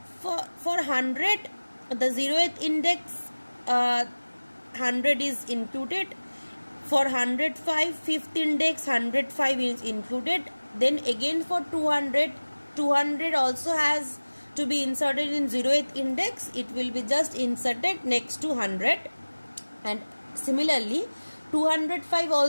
100, the 0th index 100 is included. For 105, 5th index 105 is included. Then again for 200 also has to be inserted in 0th index. It will be just inserted next to 100. And similarly 205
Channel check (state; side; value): inverted; both; correlation -1.00